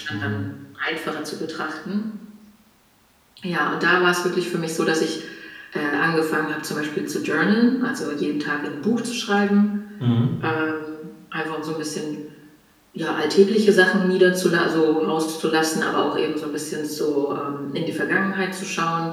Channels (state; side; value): identical; both; correlation 1.00